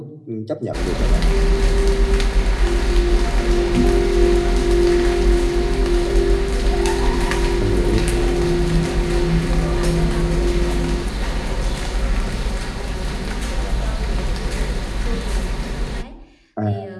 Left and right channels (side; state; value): both; identical; correlation 1.00